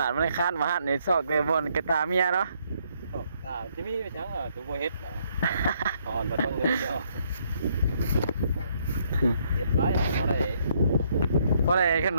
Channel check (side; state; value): both; inverted; correlation -0.70